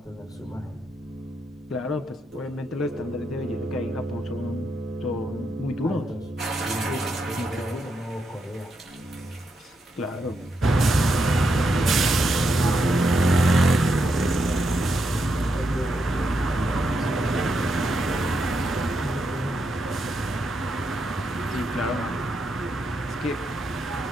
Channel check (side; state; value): both; normal; correlation 0.81